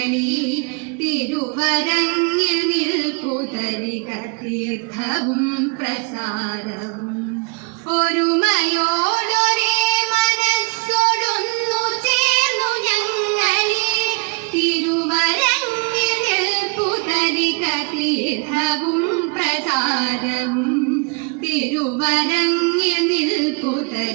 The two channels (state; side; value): quieter; left; 36.0 dB